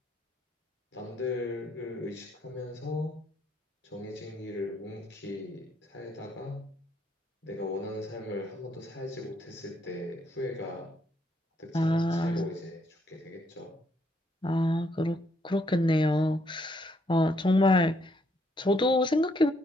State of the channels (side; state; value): both; normal; correlation 0.72